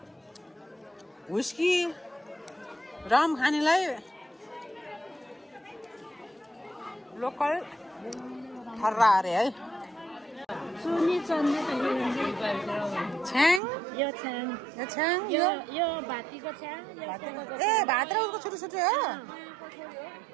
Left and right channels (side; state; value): left; drops out; at 13.6 s